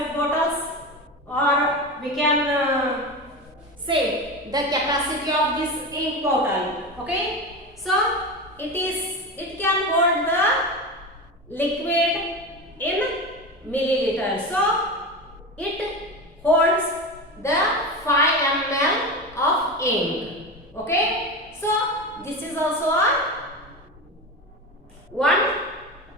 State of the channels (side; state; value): both; normal; correlation 0.23